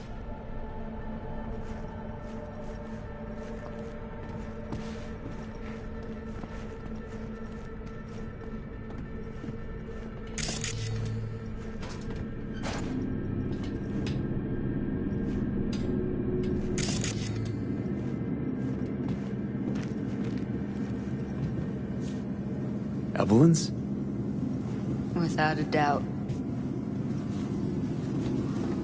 Evelyn's? Without a doubt.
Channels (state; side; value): identical; both; correlation 1.00